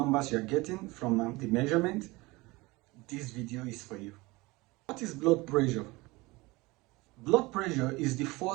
you are getting from the measurement, this video is for you. What is blood pressure? Blood pressure is the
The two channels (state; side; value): quieter; left; 22.5 dB